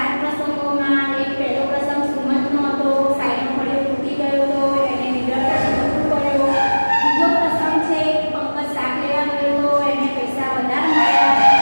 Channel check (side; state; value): both; inverted; correlation -1.00